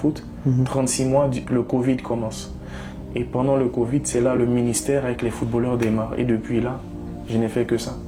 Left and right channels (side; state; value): both; identical; correlation 1.00